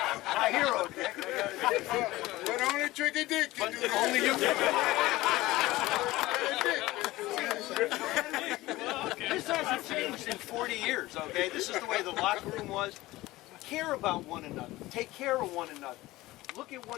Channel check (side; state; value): right; quieter; 18.3 dB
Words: My hero, Dick. But only Tricky Dick can do that. Only you can. This hasn't changed in 40 years, okay? This is the way the locker room was. Care about one another. Take care of one another. Look at